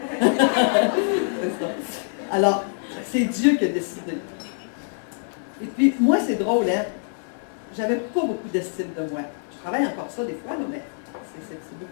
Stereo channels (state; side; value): silent; right; digital silence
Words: C'est ça. Alors, c'est Dieu qui a décidé. Et puis, moi, c'est drôle, hein? J'avais pas beaucoup d'estime de moi. Je travaille encore ça des fois, là, mais c'est